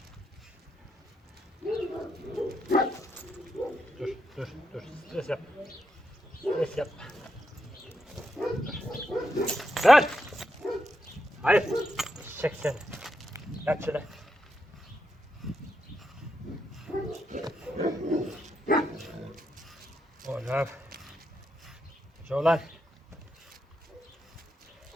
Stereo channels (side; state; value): both; normal; correlation 0.83